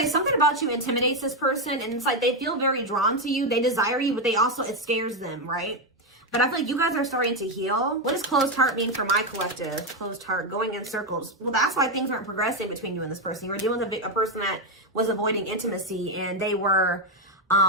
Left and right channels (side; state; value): both; normal; correlation 0.06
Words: something about you intimidates this person, and it's like they feel very drawn to you. They desire you, but it scares them, right? But I feel like you guys are starting to heal. What does closed heart mean for my collective? Closed heart, going in circles. Well, that's why things aren't progressing between you and this person. You were dealing with a person that was avoiding intimacy, and they were